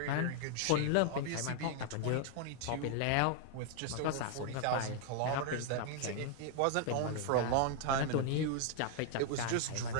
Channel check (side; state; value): both; different; correlation 0.00